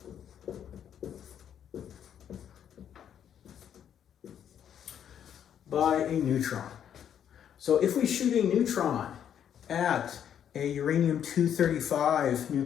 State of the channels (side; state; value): right; quieter; 9.2 dB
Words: By a neutron. So if we shoot a neutron at a uranium-235